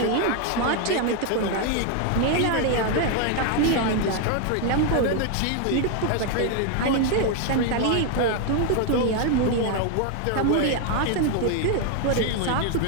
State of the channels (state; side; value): different; both; correlation 0.01